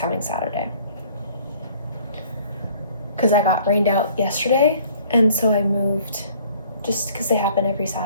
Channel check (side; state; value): both; inverted; correlation -0.55